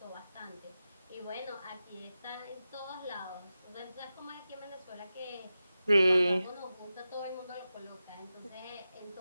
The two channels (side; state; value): both; inverted; correlation -0.93